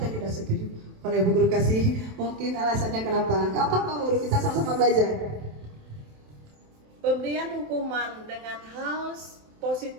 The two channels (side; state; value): left; late; 27 ms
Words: tidak setuju? Boleh Bu Guru kasih mungkin alasannya kenapa? Gak apa-apa Guru, kita sama-sama belajar. Pemberian hukuman dengan hal